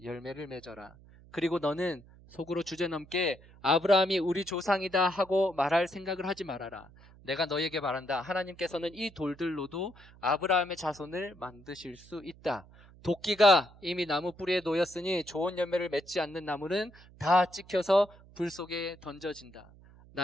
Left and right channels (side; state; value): right; noise; hum, 23 dB below the sound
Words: 열매를 맺어라. 그리고 너는 속으로 주제넘게 아브라함이 우리 조상이다 하고 말할 생각을 하지 말아라. 내가 너에게 말한다. 하나님께서는 이 돌들로도 아브라함의 자손을 만드실 수 있다. 도끼가 이미 나무 뿌리에 놓였으니 좋은 열매를 맺지 않는 나무는 다 찍혀서 불 속에 던져진다.